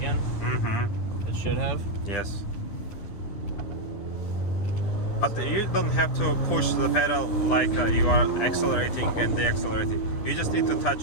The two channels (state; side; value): late; right; 10 ms